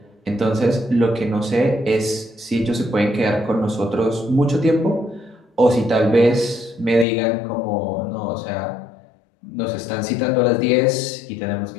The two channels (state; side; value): drops out; right; at 7.1 s